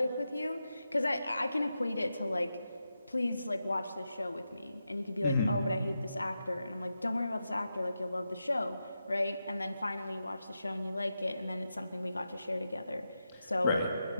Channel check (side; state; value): both; inverted; correlation -0.89